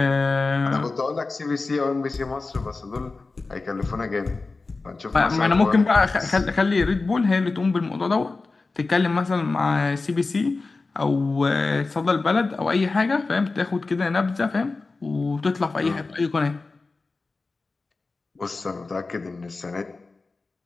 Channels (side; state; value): right; quieter; 3.7 dB